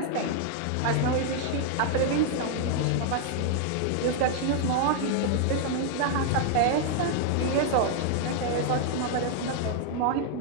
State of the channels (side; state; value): both; different; correlation 0.00